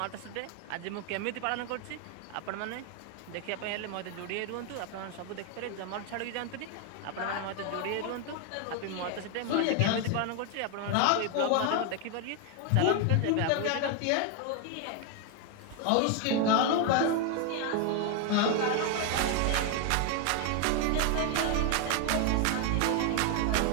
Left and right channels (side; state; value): both; different; correlation 0.01